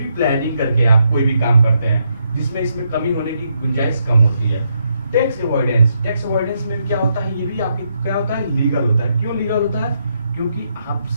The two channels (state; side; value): inverted; both; correlation -0.78